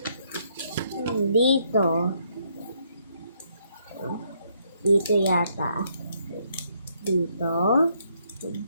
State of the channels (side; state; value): both; inverted; correlation -0.72